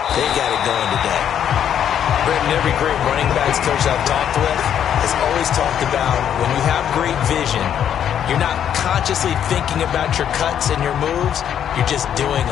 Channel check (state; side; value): quieter; right; 9.4 dB